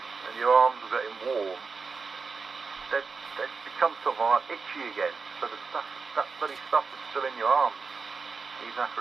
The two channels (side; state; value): left; quieter; 4.8 dB